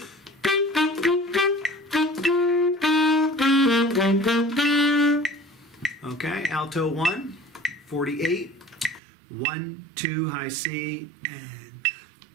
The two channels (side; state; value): left; drops out; at 9.0 s